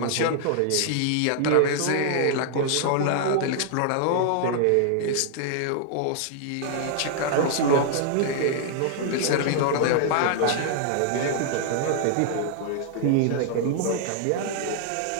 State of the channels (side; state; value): both; different; correlation -0.01